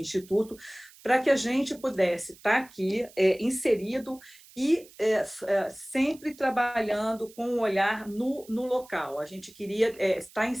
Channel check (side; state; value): right; noise; hiss, 23 dB below the sound